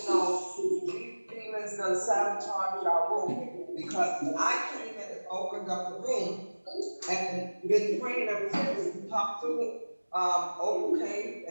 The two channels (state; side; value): inverted; both; correlation -1.00